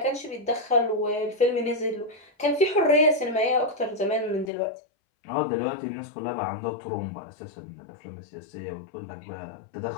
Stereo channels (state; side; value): drops out; right; at 4.5 s